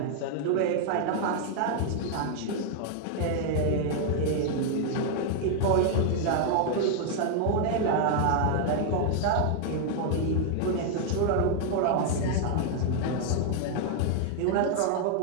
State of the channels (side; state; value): both; different; correlation 0.00